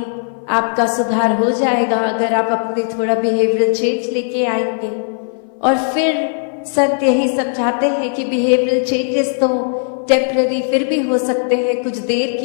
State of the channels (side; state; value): right; silent; 60 dB below the other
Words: आपका सुधार हो जाएगा, अगर आप अपने थोड़ा बिहेवियरल चेंज लेके आएंगे। और फिर संत यही समझाते हैं कि बिहेवियरल चेंजेस तो टेम्पररी फिर भी हो सकते हैं, कुछ देर